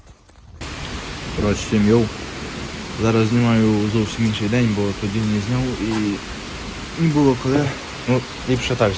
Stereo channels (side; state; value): both; identical; correlation 1.00